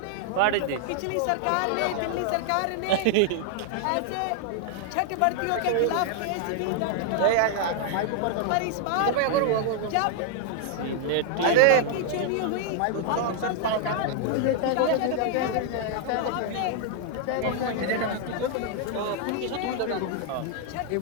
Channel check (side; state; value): both; different; correlation 0.00